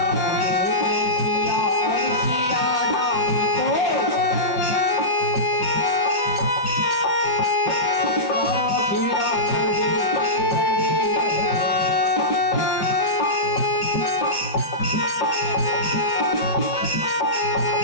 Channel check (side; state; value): right; late; 5.9 ms